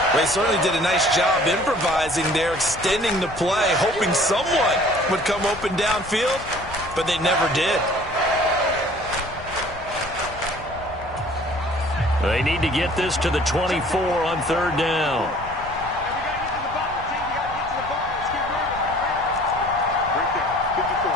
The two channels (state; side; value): noise; left; rumble, 16 dB below the sound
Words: They certainly did a nice job improvising there, extending the play, hoping someone would come open downfield, but they never did. They need to get this to the 24 on 3rd down.